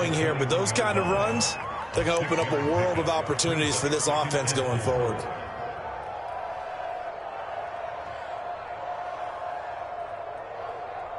here, but those kind of runs, they're going to open up a world of opportunities for this offense going forward.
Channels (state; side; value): identical; both; correlation 1.00